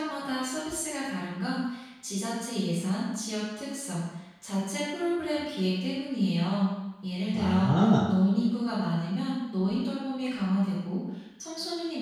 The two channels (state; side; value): identical; both; correlation 1.00